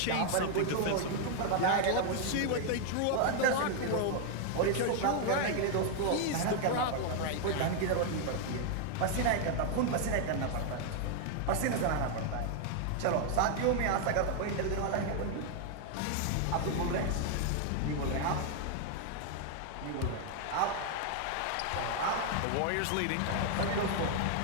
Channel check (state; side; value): different; both; correlation 0.00